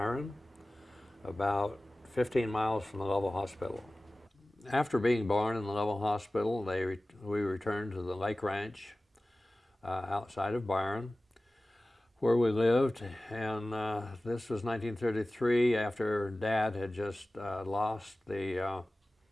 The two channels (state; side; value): normal; both; correlation 0.97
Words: about 15 miles from the Lovell Hospital. After being born in the Lovell Hospital, we returned to the Lake Ranch outside of Byron, where we lived, and this was 1933 after Dad had just lost the